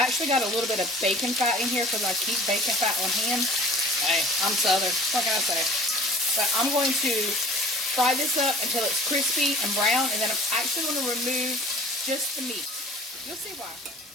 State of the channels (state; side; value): normal; both; correlation 0.47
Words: actually got a little bit of bacon fat in here because I keep bacon fat on hand. Hey, I'm Southern. What can I say? But I'm going to fry this up until it's crispy and brown, and then I'm actually going to remove just the meat. You'll see why.